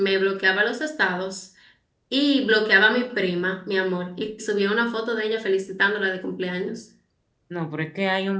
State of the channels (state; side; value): identical; both; correlation 1.00